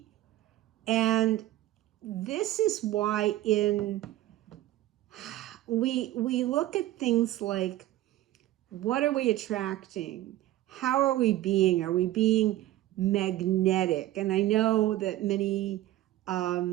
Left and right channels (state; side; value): quieter; left; 15.0 dB